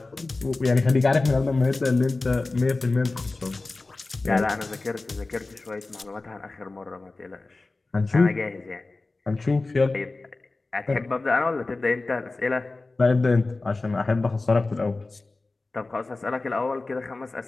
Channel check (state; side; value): quieter; right; 3.4 dB